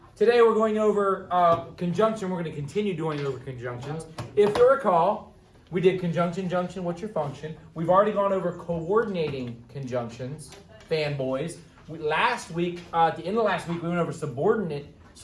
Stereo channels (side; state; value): both; identical; correlation 1.00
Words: Today we're going over conjunction. We're going to continue doing over conjunctions. If you recall, we did conjunction, junction, what's your function? We've already gone over coordinating conjunctions, fanboys. Last week, at the end of last week, we went over